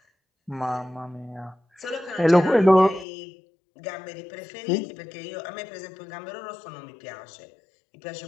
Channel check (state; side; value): drops out; right; at 3.1 s